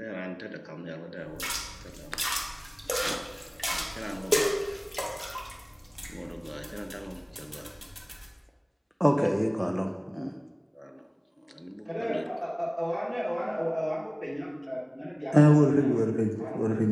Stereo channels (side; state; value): both; identical; correlation 1.00